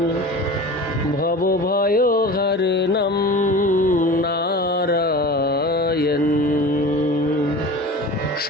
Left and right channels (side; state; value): both; normal; correlation 0.35